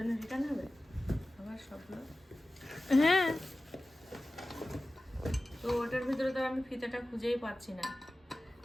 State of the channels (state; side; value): normal; both; correlation 0.96